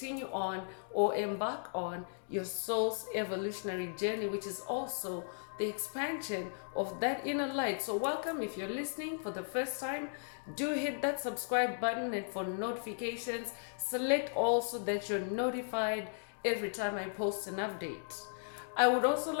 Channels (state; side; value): silent; right; digital silence